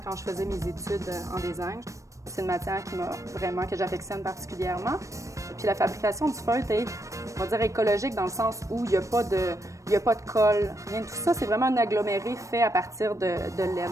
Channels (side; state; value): left; late; 0.15 ms